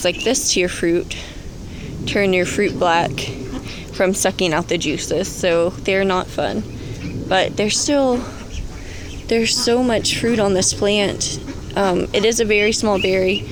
like this to your fruit, turn your fruit black from sucking out the juices, so they're not fun. But there's so much fruit on this plant. It is a very small berry.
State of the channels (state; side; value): identical; both; correlation 1.00